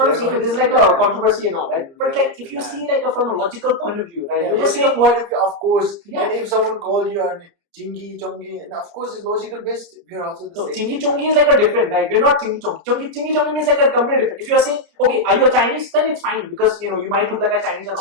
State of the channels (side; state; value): left; late; 30 ms